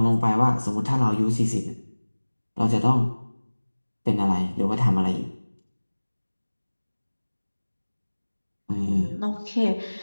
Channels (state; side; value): inverted; both; correlation -1.00